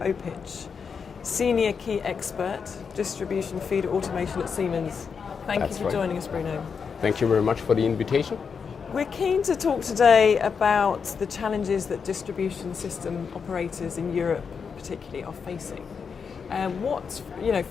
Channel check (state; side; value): quieter; right; 6.0 dB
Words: Senior Key Expert, Distribution Feeder Automation at Siemens. Thank you for joining us, Bruno. Thank you very much for the invitation. We're keen to talk today about the challenges that distribution system operators in Europe particularly are facing.